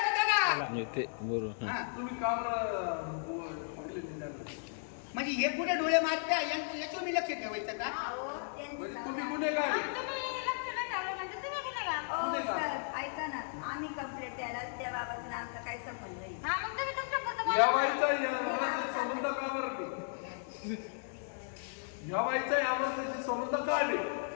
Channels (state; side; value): silent; right; digital silence